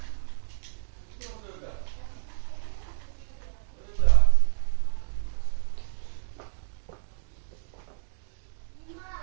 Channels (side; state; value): left; silent; digital silence